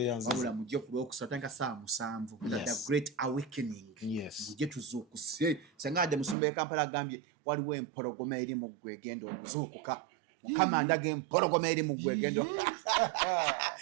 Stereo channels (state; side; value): drops out; left; at 6.4 s